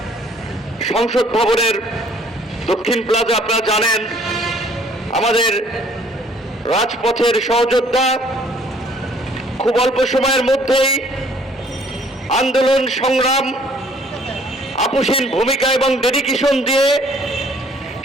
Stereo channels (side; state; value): both; normal; correlation 0.59